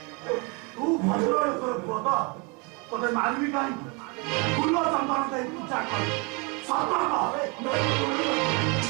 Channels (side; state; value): left; quieter; 29.4 dB